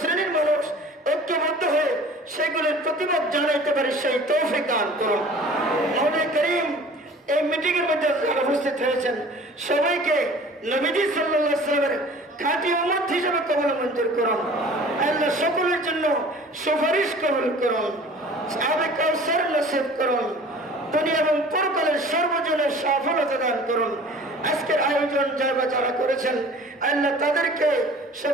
মানুষ ঐক্যবদ্ধ হয়ে সেগুলির প্রতিবাদ জানাইতে পারি, সেই তৌফিক দান করুন। মওলা করিম, এই মিটিং এর মধ্যে যারা উপস্থিত হয়েছেন সবাইকে নবীজি সাল্লাল্লাহু আলাইহি ওয়াসাল্লামের খাঁটি উম্মত হিসেবে কবুল মঞ্জুর করুন। আল্লাহ সকলের জন্য সুপারিশ কবুল করুন, সাহাবে কাউসার নসিব করুন, দুনিয়া এবং পরকালের সর্বজনের সফলতা দান করুন। আজকের আয়োজন যারা করেছেন আল্লাহ তাদেরকে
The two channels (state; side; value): normal; both; correlation 0.46